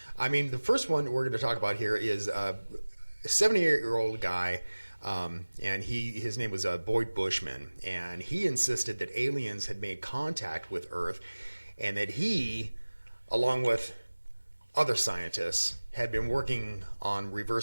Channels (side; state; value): both; inverted; correlation -1.00